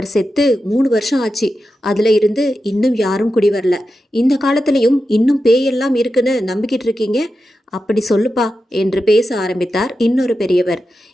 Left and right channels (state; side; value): normal; both; correlation 0.90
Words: செத்து 3 வருஷம் ஆச்சு. அதில் இருந்து இன்னும் யாரும் குடி வரல. இந்த காலத்திலையும் இன்னும் பேயெல்லாம் இருக்குன்னு நம்பிக்கிட்டு இருக்கீங்க? அப்படி சொல்லுப்பா என்று பேச ஆரம்பித்தார் இன்னொரு பெரியவர்.